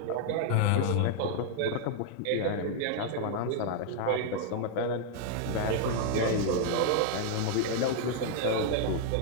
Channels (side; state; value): both; different; correlation 0.00